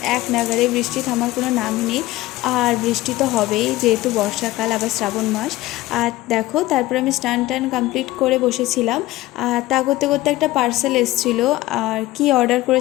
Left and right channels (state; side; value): quieter; right; 17.4 dB